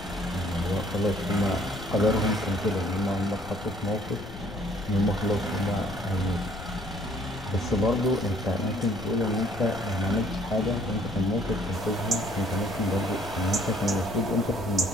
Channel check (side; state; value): left; noise; rumble, 13 dB below the sound